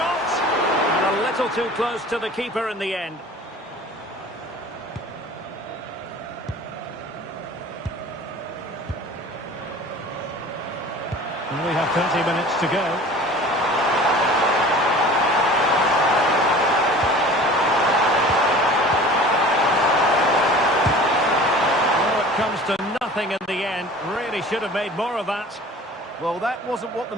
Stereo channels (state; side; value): normal; both; correlation 0.43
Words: And a little too close to the keeper in the end. We have 30 minutes to go. Oh, it comes to nothing in the end. Really should have made more of that. Well, that wasn't what the